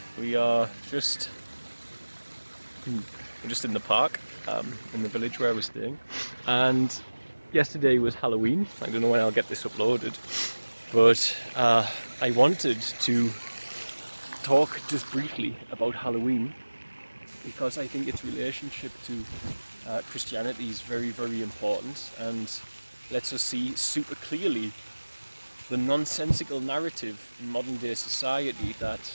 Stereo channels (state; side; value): inverted; both; correlation -1.00